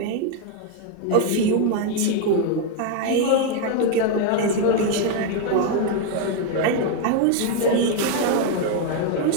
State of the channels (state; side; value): different; both; correlation 0.01